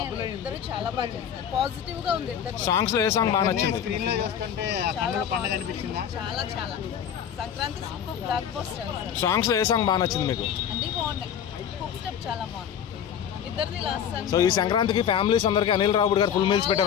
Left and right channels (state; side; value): quieter; right; 8.7 dB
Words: చాలా బాగా చేశారు, పాజిటివ్ గా ఉంది. సాంగ్స్ లో ఏ సాంగ్ బాగా నచ్చింది? స్క్రీన్ లో చూస్తుంటే కన్నుల పండుగ అనిపించిందా? చాలా చాలా Sankranti super block buster. Songs లో ఏ సాంగ్ బాగా నచ్చింది మీకు? అన్ని బాగున్నాయి, హుక్ స్టెప్ చాలా బాగుంది ఇద్దరిది లాస్ట్ సాంగ్. సో ఈ సంక్రాంతికి ఫ్యామిలీస్ అందరికి అనిల్ రావుడ్ గారు ఫుల్ మీల్స్